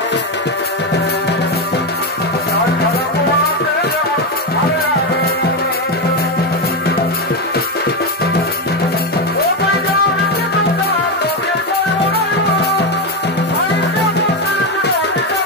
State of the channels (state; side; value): normal; both; correlation 0.10